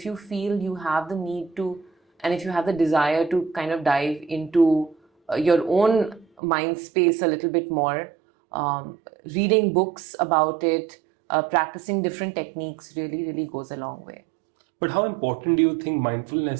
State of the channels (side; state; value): left; drops out; at 6.2 s